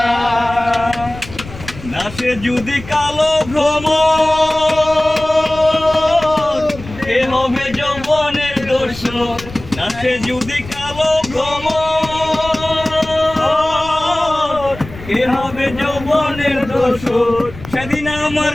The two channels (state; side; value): noise; left; rumble, 15 dB below the sound